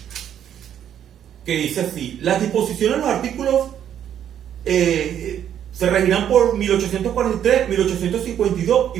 que dice así: las disposiciones de los artículos se regirán por 1843, 1852 y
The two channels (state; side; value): quieter; left; 9.8 dB